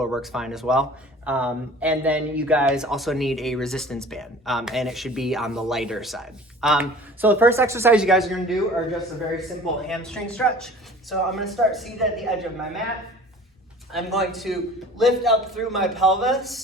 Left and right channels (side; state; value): both; normal; correlation 0.45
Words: works fine as well. And then you guys also need a resistance band, and it should be on the lighter side. So the first exercise you guys are gonna do are just a very simple hamstring stretch. So I'm gonna start seated at the edge of my mat. I'm going to lift up through my